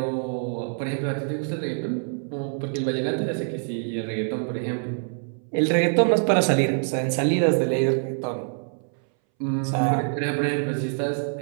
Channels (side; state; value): left; silent; 61 dB below the other